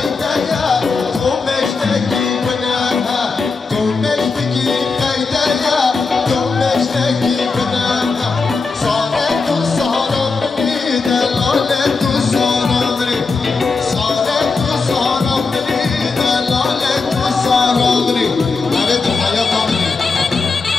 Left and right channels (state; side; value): quieter; right; 4.4 dB